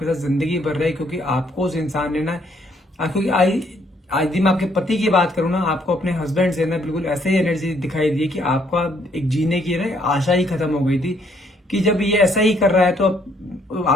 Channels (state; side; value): normal; both; correlation 0.68